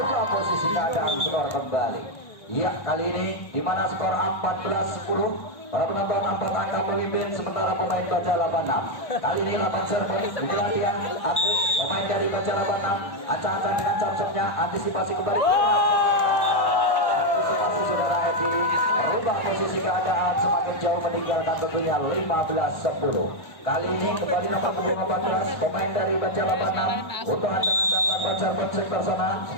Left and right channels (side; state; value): right; late; 1.7 ms